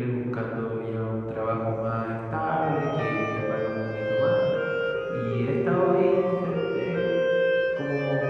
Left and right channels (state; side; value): identical; both; correlation 1.00